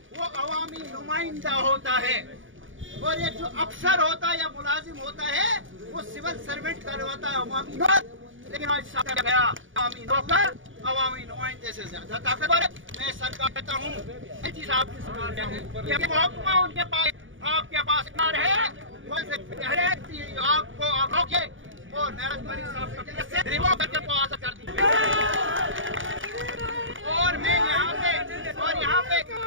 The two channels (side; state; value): left; late; 0.57 ms